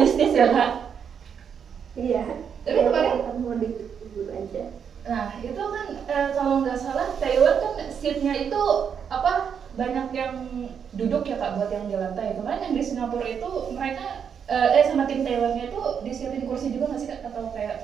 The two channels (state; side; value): quieter; left; 7.4 dB